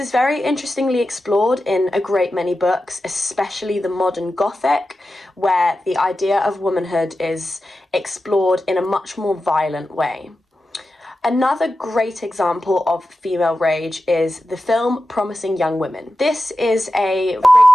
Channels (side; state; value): both; normal; correlation 0.92